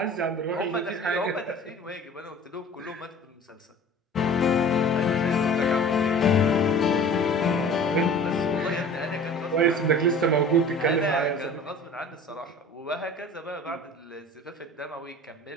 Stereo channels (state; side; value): normal; both; correlation 0.43